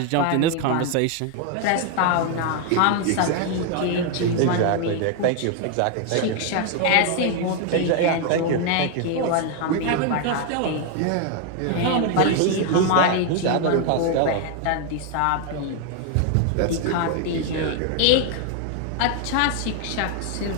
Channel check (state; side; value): different; both; correlation 0.00